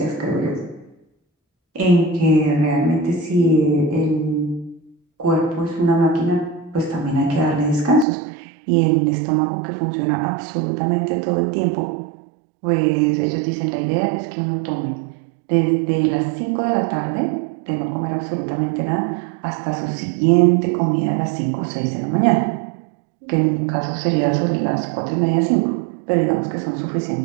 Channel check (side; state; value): left; drops out; at 8.1 s